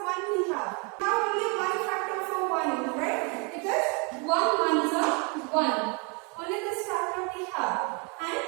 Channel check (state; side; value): quieter; left; 33.6 dB